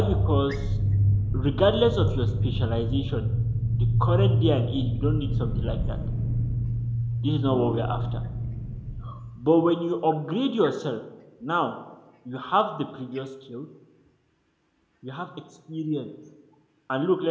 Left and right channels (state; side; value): identical; both; correlation 1.00